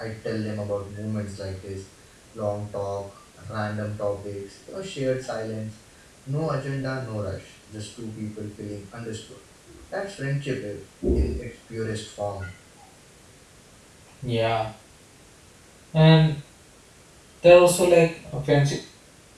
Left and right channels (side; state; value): both; identical; correlation 1.00